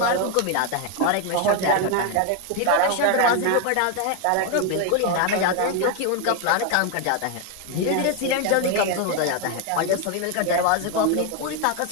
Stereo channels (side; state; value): both; different; correlation 0.01